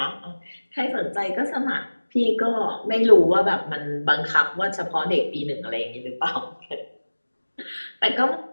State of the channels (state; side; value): inverted; both; correlation -1.00